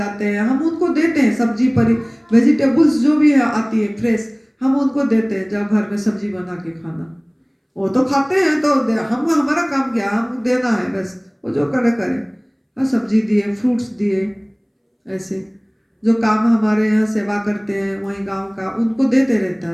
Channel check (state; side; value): identical; both; correlation 1.00